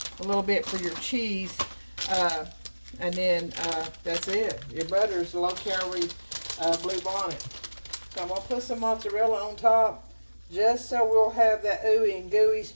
a little bit for your cheese. And then that's it. Your butter is low-calorie Blue Bonnet. So I'm going to put some mozzarella on top, just so we'll have that ooey and gooey,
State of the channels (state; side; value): inverted; both; correlation -1.00